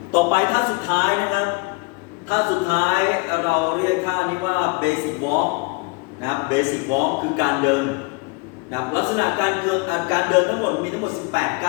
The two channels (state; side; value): quieter; right; 29.5 dB